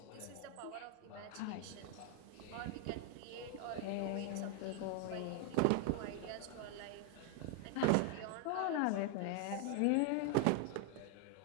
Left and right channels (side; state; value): both; different; correlation 0.01